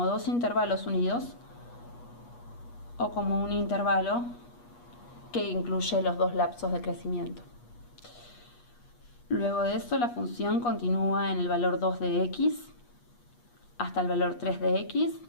dos intervalos unidos o como un intervalo que incluye los dos lapsos de crecimiento. Luego de eso, la función continúa en el valor 2 de x hasta el valor 3 de x,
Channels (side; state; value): right; late; 8.3 ms